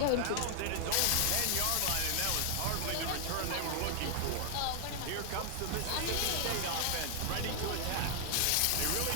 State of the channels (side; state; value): both; different; correlation 0.00